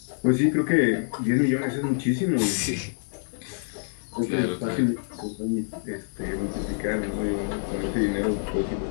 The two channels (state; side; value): silent; right; 56 dB below the other